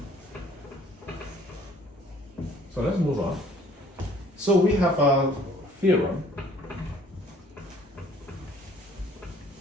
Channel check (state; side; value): normal; both; correlation 0.57